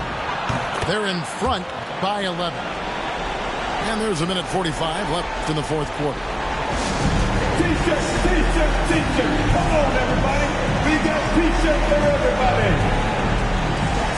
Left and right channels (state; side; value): identical; both; correlation 1.00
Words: They're in front by 11. And there's a minute 45 left in the fourth quarter. T-shirt, T-shirt, T-shirt. Come on, everybody. We got T-shirts for everybody.